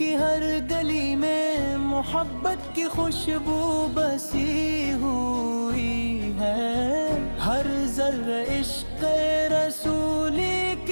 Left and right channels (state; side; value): inverted; both; correlation -1.00